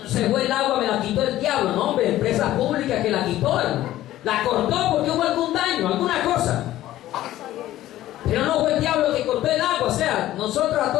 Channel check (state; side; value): quieter; right; 14.3 dB